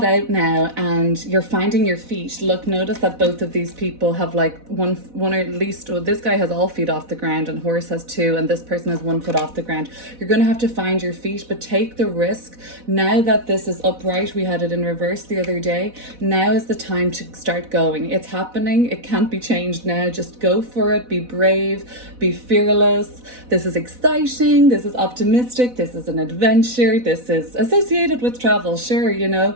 out now and you're finding your feet. Look, notice that both of these people have like one or at least, well, this guy has all feet off the ground and horse has 2, and this person has 1 foot off the ground. You're going to have to find your feet, but take the risk. Now that this is upright, we had it in reverse the other day. Now is the time to start going. It's happening. It can't be changed now. Just go for it. Be brave. Be fearless. This is exciting. This is optimistic. This is an adventure. This is associated with travel. Sure, you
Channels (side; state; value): left; late; 4.1 ms